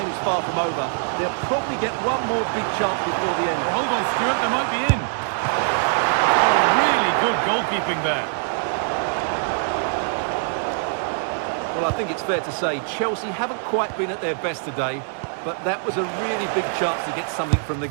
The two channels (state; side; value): silent; left; 56 dB below the other